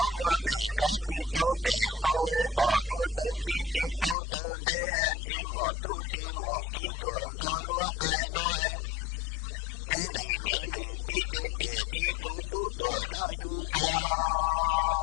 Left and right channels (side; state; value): right; drops out; at 4.2 s